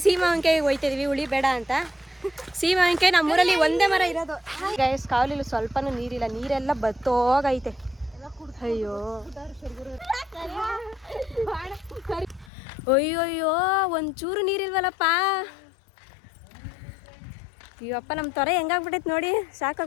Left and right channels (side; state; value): right; drops out; at 12.5 s